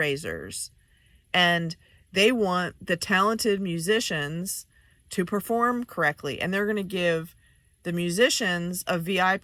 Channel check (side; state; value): both; identical; correlation 1.00